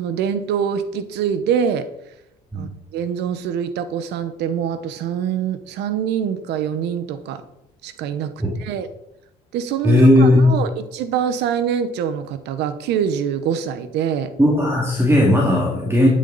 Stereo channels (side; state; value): both; normal; correlation 0.57